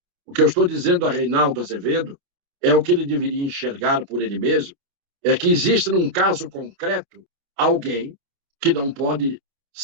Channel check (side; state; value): left; late; 28 ms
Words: O que eu estou dizendo a Reinaldo Azevedo é o que ele deveria enxergar por ele mesmo, é que existe num caso concreto alguém que não pode